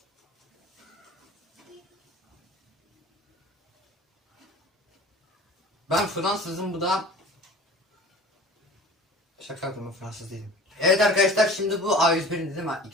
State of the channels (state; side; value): normal; both; correlation 0.42